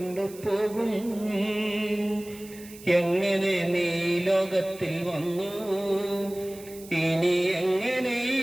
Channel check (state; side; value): noise; right; hiss, 19 dB below the sound